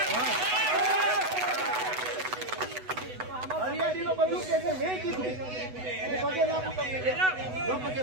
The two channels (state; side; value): late; left; 8.0 ms